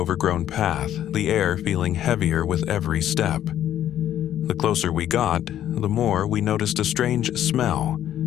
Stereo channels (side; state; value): right; quieter; 11.4 dB